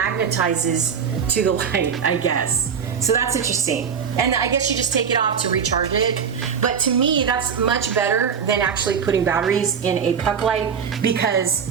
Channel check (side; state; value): left; quieter; 6.9 dB